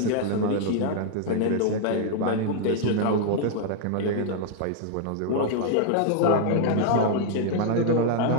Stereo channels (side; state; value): both; different; correlation -0.01